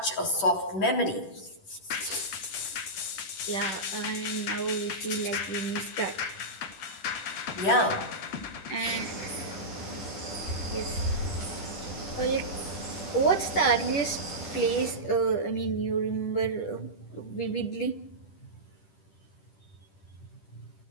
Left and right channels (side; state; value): right; late; 10 ms